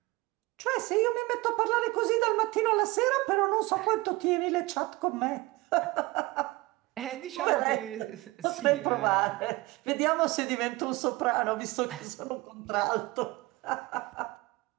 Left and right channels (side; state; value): left; quieter; 21.7 dB